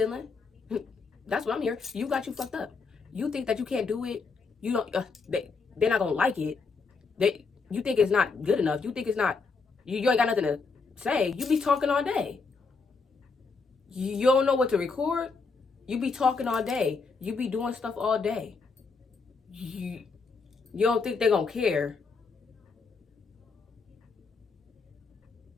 That's what I'm hearing. You got you fucked up. You think that you can't do it. You don't. They're not gonna like it. You think it's not good enough. You think it's not. You ain't got nothing to say. You be talking all day. You don't know what to record. You be talking all day. You be doing stuff all day. You don't think they're gonna care.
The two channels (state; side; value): quieter; right; 4.6 dB